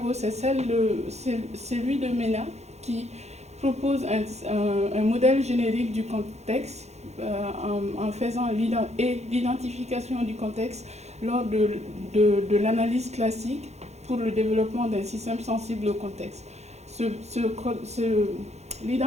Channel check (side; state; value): left; late; 0.32 ms